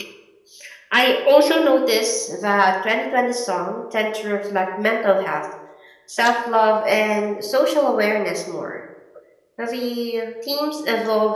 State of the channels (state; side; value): identical; both; correlation 1.00